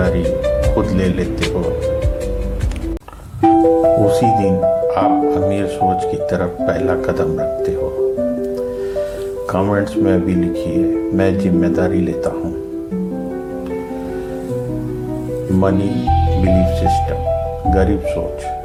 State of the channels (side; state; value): both; identical; correlation 1.00